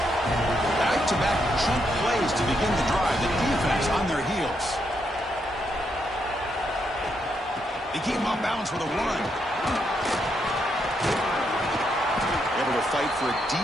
Back-to-back chunk plays to begin the drive. The defense on their heels. They keep him off balance with a run. Able to fight for a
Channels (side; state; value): both; normal; correlation 0.79